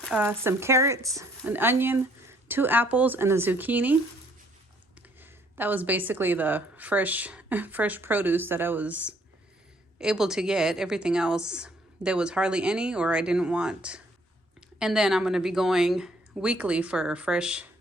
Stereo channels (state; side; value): normal; both; correlation 0.64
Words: some carrots, an onion, 2 apples, and a zucchini. That was basically the fresh produce that I was able to get. Everything else, there was hardly any, or I didn't want. And then I'm gonna be going weekly for fresh